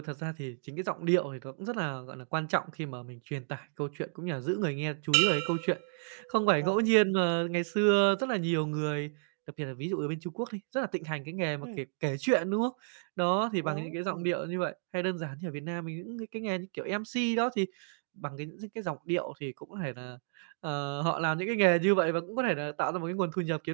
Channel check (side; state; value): left; silent; digital silence